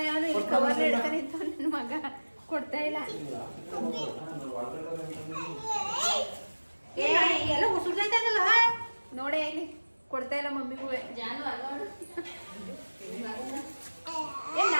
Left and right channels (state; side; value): inverted; both; correlation -1.00